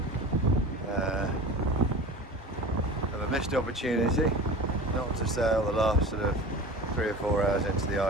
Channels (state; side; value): normal; both; correlation 0.35